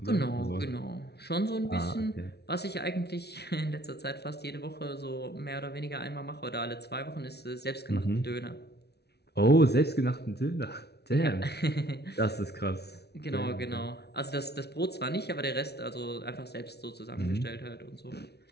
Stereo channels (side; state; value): right; late; 0.49 ms